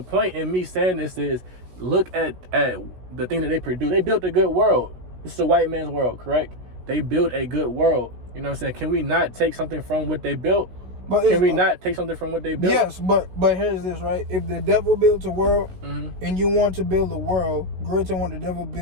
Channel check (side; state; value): left; late; 16 ms